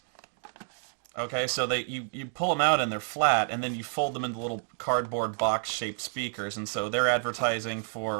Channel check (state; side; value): silent; left; digital silence